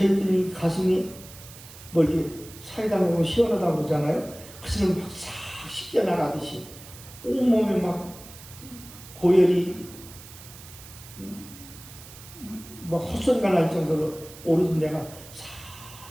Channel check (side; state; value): right; noise; hiss, 17 dB below the sound